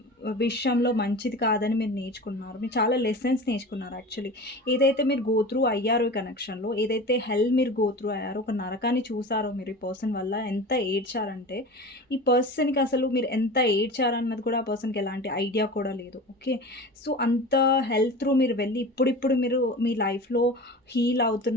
విషయంలో మంచిది కాదని మీరు నేర్చుకున్నారు. మీరు చాలా లెసన్స్ నేర్చుకున్నారు యాక్చువల్లీ. ఏదైతే మీరు గో త్రూ అయ్యారో ఈ కనెక్షన్‌లో, ఏదైతే హెల్ మీరు గో త్రూ అయ్యారో, ఒక నరకాన్ని చూసారో మీరు ఈ పర్సన్ వల్ల, ఎంత ఏడ్చారంటే, ఈ పర్సన్‌కి అసలు మీరు ఎంత ఏడ్చారన్నది కూడా ఆ పర్సన్‌కి ఎలాంటి ఐడియా కూడా లేదు. ఓకే, సో అంత హెల్ త్రూ మీరు వెళ్ళి ఇప్పుడిప్పుడు మీరు మీ లైఫ్‌లో హీల్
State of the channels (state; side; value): normal; both; correlation 0.34